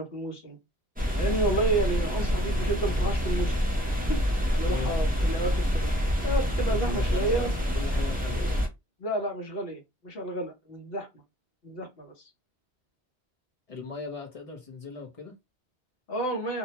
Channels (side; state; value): both; normal; correlation 0.57